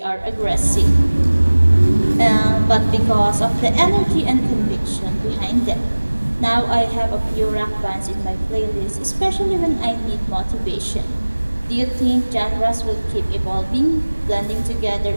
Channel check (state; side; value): inverted; both; correlation -1.00